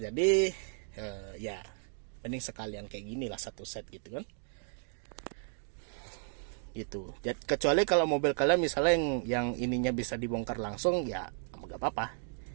Jadi ya mending sekalian kayak gini lah, satu set gitu kan. Gitu. Jadi, kecuali kalau mobil kalian misalnya yang ininya bisa dibongkar langsung, ya nggak apa-apa,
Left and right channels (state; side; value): silent; left; 55 dB below the other